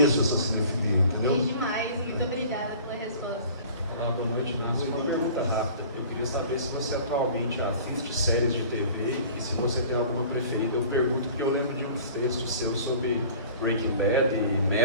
essa cinefilia, entendeu? Sim, demais, muito obrigada pela resposta. Olá, boa noite. Uma pergunta rápida. Eu queria saber se você atualmente assiste séries de TV e se você tem alguma preferida. Eu pergunto porque eu lembro de uns textos seus sobre Breaking Bad e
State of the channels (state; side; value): inverted; both; correlation -0.44